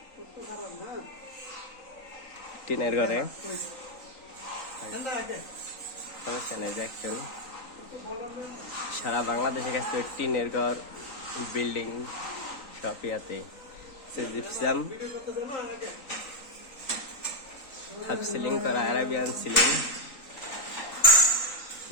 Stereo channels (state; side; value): late; right; 3.9 ms